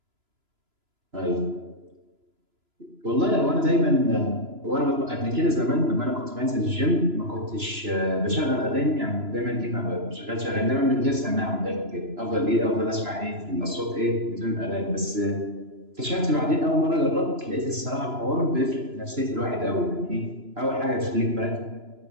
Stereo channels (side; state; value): left; late; 3.0 ms